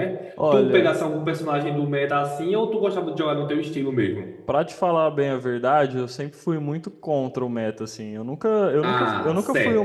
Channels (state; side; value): identical; both; correlation 1.00